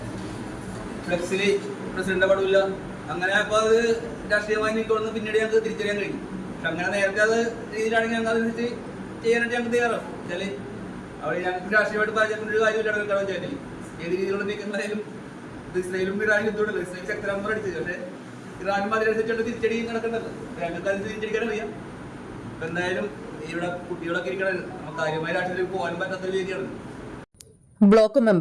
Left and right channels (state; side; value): identical; both; correlation 1.00